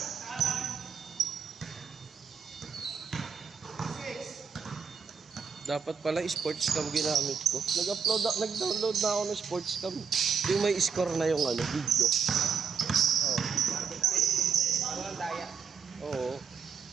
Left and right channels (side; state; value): left; quieter; 6.3 dB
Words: Dapat pala sports cam ginamit ko. Nag-download na ako ng sports cam. Yung may score na yung ano, video. Oh. Walang daya. Oo.